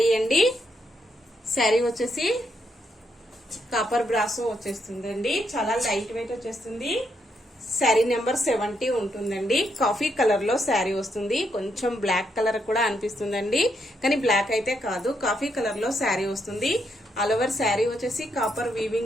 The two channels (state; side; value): normal; both; correlation 0.78